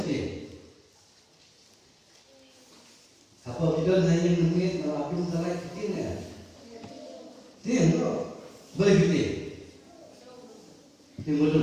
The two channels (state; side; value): identical; both; correlation 1.00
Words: Apa kita hanya mengingat melapun salah tim ya? Tim bro, boleh tim. Tim